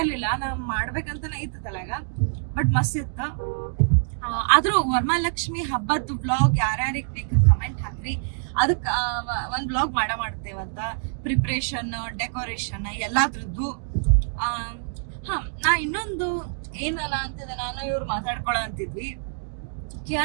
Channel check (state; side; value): silent; left; digital silence